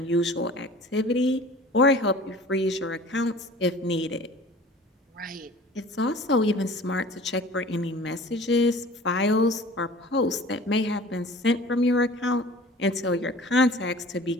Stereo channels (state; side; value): normal; both; correlation 0.45